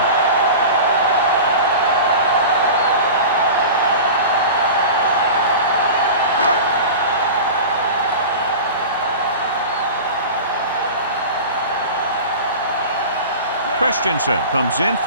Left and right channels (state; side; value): inverted; both; correlation -0.33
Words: Christensen comes in